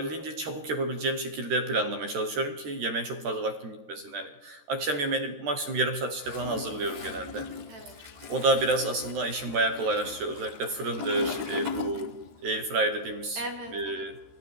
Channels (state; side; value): late; left; 13 ms